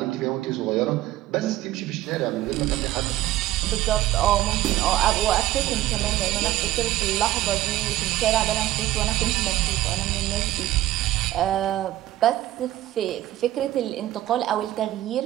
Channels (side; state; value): left; quieter; 14.6 dB